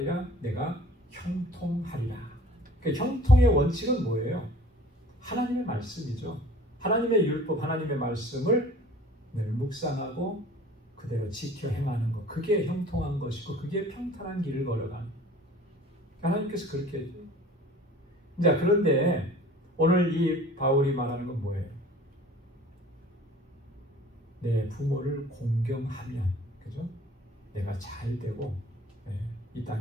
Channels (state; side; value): normal; both; correlation 0.48